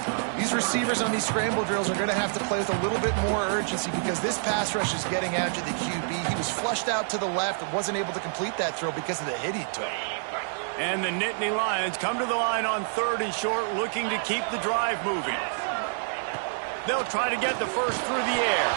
These receivers on these scramble drills are going to have to play with a little bit more urgency because this pass rush is getting after the QB. He was flushed out to the left and wasn't able to complete that throw because of the hit he took. And the Nittany Lions come to the line on 3rd and short, looking to keep the drive moving. They'll try to get the first through the air.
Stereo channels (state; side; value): silent; left; 57 dB below the other